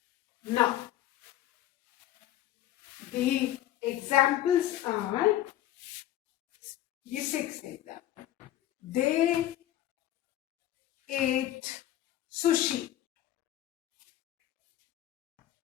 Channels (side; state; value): right; quieter; 13.3 dB